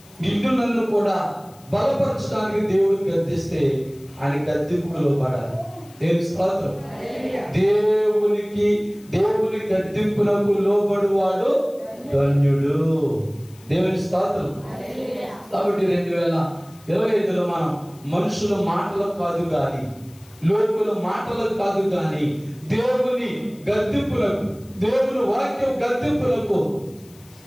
నిన్ను నన్ను కూడా బలపరచడానికి దేవుడు గద్దిస్తే ఆయన గద్దింపుకు లోబడాలి. దేవుని స్తోత్రం. దేవుని గద్దింపులకు లోబడువాడు ధన్యుడు. దేవుని స్తోత్రం. కాబట్టి 2025లో మనం మనుషుల మాటలకు కాదు కానీ, లోకుల మాటలకు కాదు కానీ, దేవుని గద్దింపులకు, దేవుని వాక్యం గద్దింపులకు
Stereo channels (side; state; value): left; noise; hiss, 26 dB below the sound